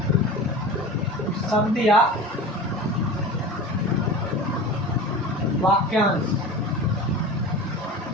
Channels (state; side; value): normal; both; correlation 0.33